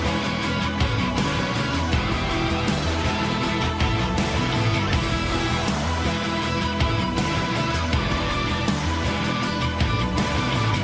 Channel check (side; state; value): both; identical; correlation 1.00